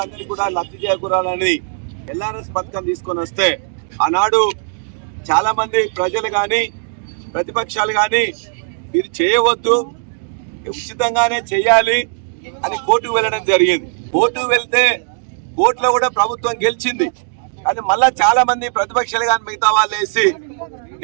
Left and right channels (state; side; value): silent; left; 63 dB below the other